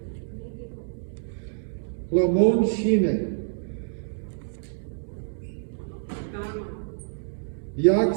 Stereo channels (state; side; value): silent; left; digital silence